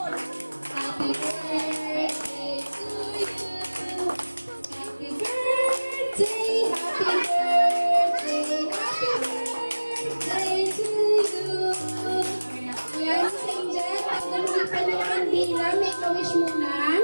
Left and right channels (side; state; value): both; inverted; correlation -1.00